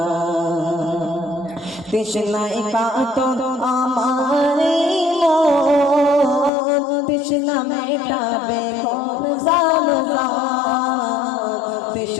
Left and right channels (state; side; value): drops out; right; at 6.5 s